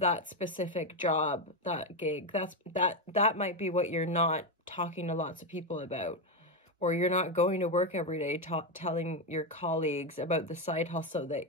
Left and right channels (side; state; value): both; normal; correlation 0.08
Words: specific job, that gig. That might be what you're not talking to lots of people about, or you're not going to work every day telling your colleagues about the side hustle that